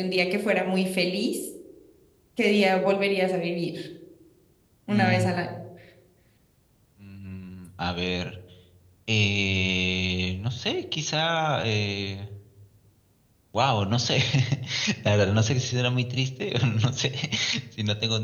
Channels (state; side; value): identical; both; correlation 1.00